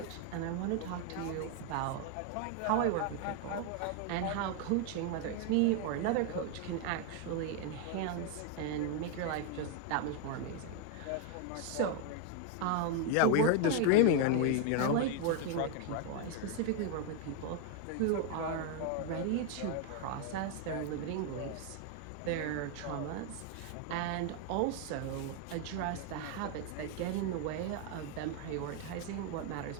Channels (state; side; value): different; both; correlation 0.00